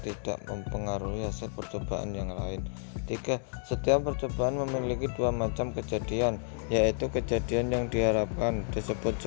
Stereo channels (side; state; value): right; silent; 57 dB below the other